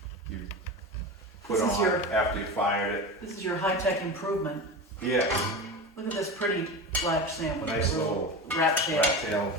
put This is on your- after you fired it. This is your high-tech improvement. Yeah, Look at this pretty black sandwich. nice with a little rat tail. rat tail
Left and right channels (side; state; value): both; normal; correlation 0.26